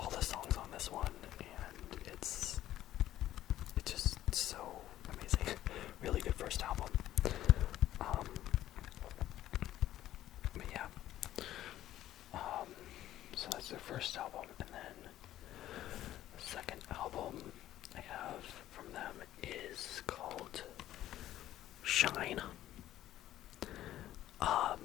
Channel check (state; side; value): quieter; right; 13.3 dB